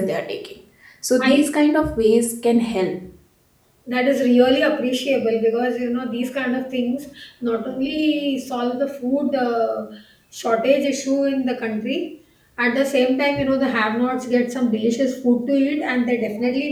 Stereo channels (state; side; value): identical; both; correlation 1.00